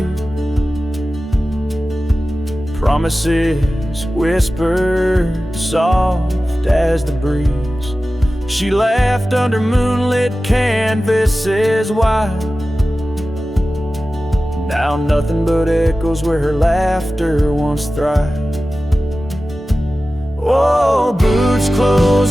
promises whispered soft as the breeze. She laughed under moonlit canvases wide. Now nothing but echoes where her laughter once thrived. Oh, boots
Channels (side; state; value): both; normal; correlation 0.95